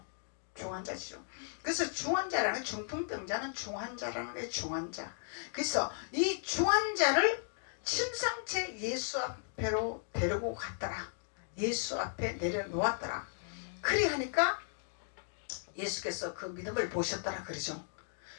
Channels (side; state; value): right; silent; digital silence